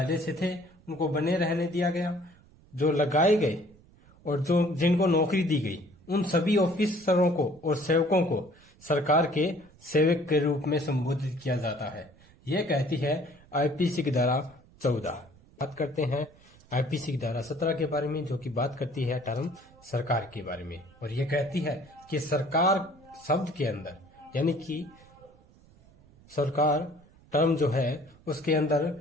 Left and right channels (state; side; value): noise; right; rumble, 27 dB below the sound